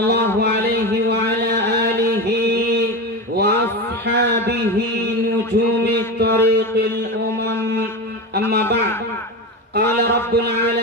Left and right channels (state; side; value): normal; both; correlation 0.22